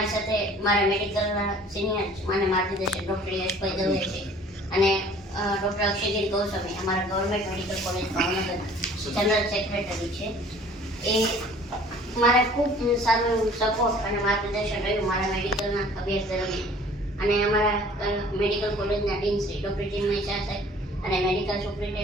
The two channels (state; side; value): normal; both; correlation 0.51